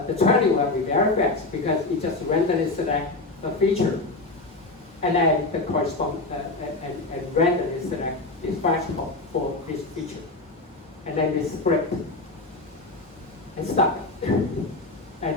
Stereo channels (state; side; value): quieter; right; 3.1 dB